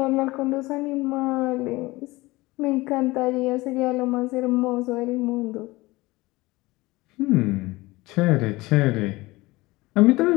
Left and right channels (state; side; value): quieter; right; 20.9 dB